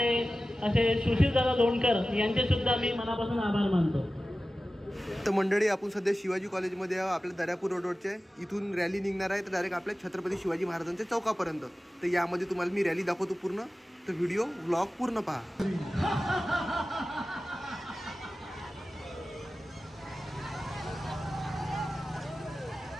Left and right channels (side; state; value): both; normal; correlation 0.95